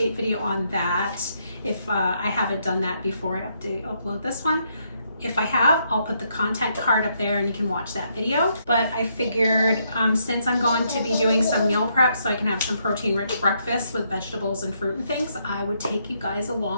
video on that if I haven't done that before I upload this one. If I have, I'll put the content card up there and you can watch that video. But I figured since I'm going to be doing some meal prep so I can have some protein-rich breakfast with vegetables and fruit and things, I would take you guys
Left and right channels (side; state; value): both; inverted; correlation -0.75